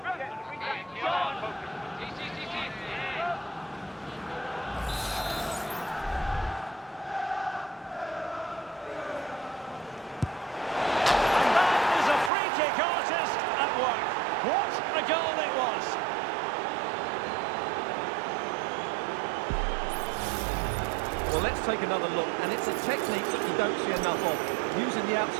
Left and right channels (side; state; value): left; drops out; at 12.3 s